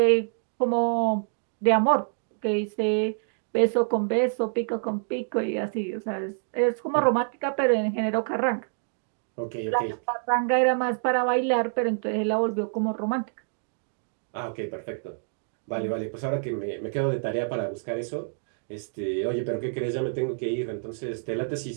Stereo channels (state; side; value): silent; left; digital silence